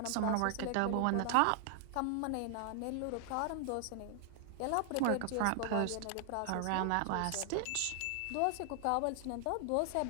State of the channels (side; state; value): both; different; correlation 0.00